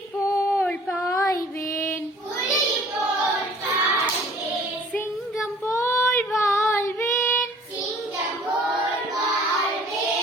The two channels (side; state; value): both; normal; correlation 0.52